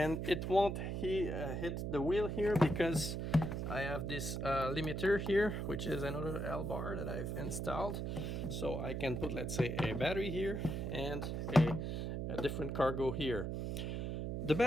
it won't hit the wheel here because I have this limiter here, which is another L-bar that I've installed. So I can put, let's say, a battery here and a different cargo here. The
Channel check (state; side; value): noise; right; hum, 2 dB below the sound